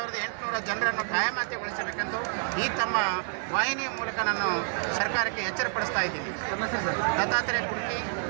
ಜನರನ್ನು ಕಾಯಮಾತಿಗೊಳಿಸಬೇಕೆಂದು ಈ ತಮ್ಮ ವಾಹಿನಿಯ ಮೂಲಕ ನಾನು ಸರ್ಕಾರಕ್ಕೆ ಎಚ್ಚರಪಡಿಸ್ತಾ ಇದ್ದೀನಿ. ದತ್ತಾತ್ರೇಯ ಕುರ್ಕಿ,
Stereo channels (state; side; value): silent; left; digital silence